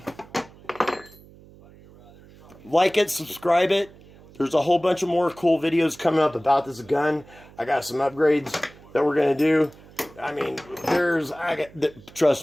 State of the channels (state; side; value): noise; right; hum, 23 dB below the sound